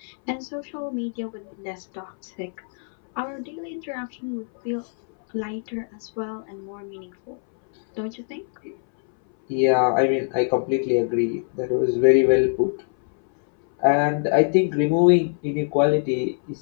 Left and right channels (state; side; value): silent; right; 63 dB below the other